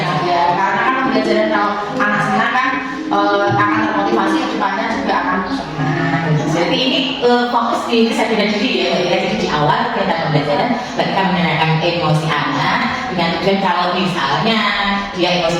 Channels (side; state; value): both; identical; correlation 1.00